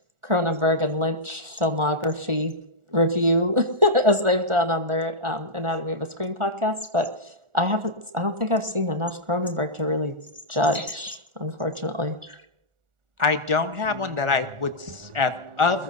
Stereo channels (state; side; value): late; left; 1.4 ms